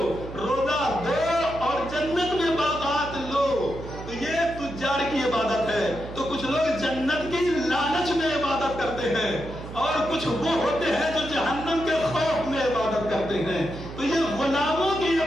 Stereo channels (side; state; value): right; noise; hum, 11 dB below the sound